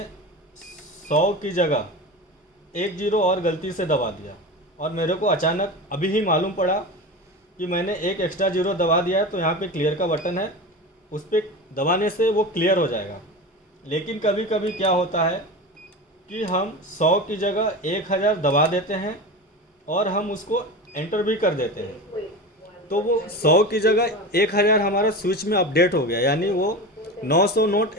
100 की जगह 1 जीरो और गलती से दबा दिया, और मेरे को अचानक अभी ही मालूम पड़ा कि मैंने एक एक्स्ट्रा जीरो दबा दिया है। तो यहाँ पे क्लियर का बटन है, उस पर दबाने से वो क्लियर हो जाएगा। लेकिन कभी कभी क्या होता है कि हम 100 की जगह 1000 दबा देते हैं और हम उसको एंटर भी कर देते हैं, तो वो 100 की जगह 1000 हमारा स्विच में अपडेट हो गया, यानी वो 900 नोट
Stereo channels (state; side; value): normal; both; correlation 0.27